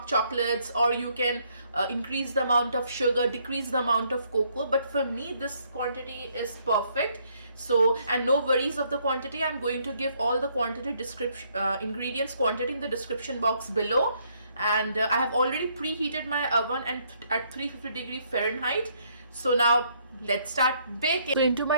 chocolates, or you can increase the amount of sugar, decrease the amount of cocoa. But for me, this quantity is perfect. So, and no worries of the quantity. I'm going to give all the quantity description, ingredients quantity in the description box below. And I have already preheated my oven and at 350 Fahrenheit. So now let's start baking. So into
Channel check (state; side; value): inverted; both; correlation -0.69